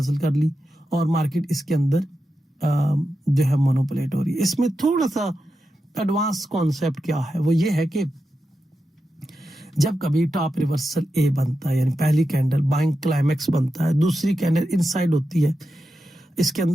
कर ली और मार्केट इसके अंदर जो है मोनोपोलेट हो रही है। इसमें थोड़ा सा एडवांस कॉन्सेप्ट क्या है, वो ये है कि जब कभी टॉप रिवर्सल ए बनता है यानी पहली कैंडल बाइंग क्लाइमेक्स बनता है, दूसरी कैंडल इनसाइड होती है, इसके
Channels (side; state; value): both; normal; correlation 0.89